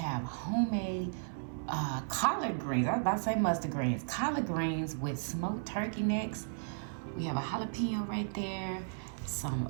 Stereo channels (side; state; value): left; silent; 55 dB below the other